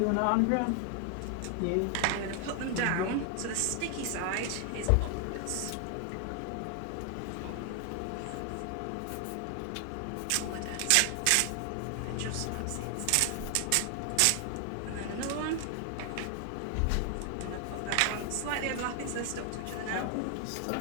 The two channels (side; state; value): both; different; correlation 0.00